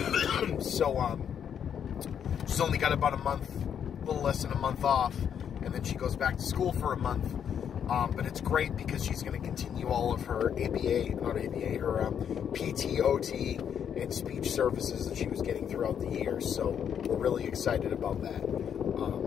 so she's only got about a little less than a month off. And then she goes back to school for a month. But it's great because she's going to continue all of her her PT, OT, and speech services that she was getting throughout the year. So we're really excited about that.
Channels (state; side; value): quieter; right; 8.3 dB